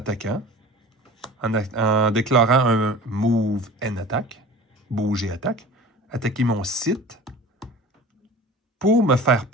en déclarant un Move and Attack, bouge et attaque, attaquer mon site pour me faire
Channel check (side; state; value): both; normal; correlation 0.40